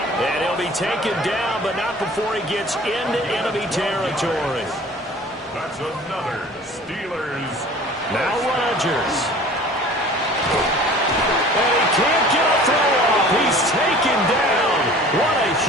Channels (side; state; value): both; normal; correlation 0.45